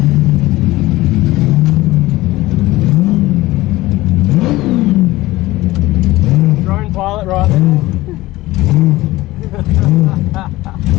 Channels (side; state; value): right; quieter; 18.3 dB